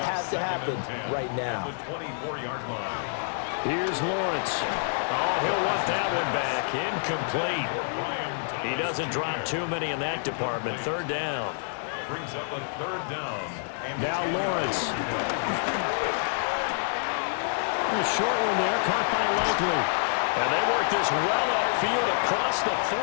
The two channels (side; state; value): right; silent; digital silence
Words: has to happen right now. Here's Lawrence. Oh, he'll want that one back. Incomplete. He doesn't drop too many in that department. Third down. Brings up a third down. Now Lawrence. A short one there, caught by Likely. And they work this well upfield across the 45.